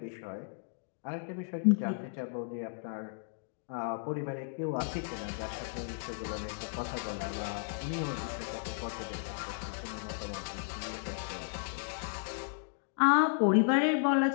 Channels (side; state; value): right; silent; digital silence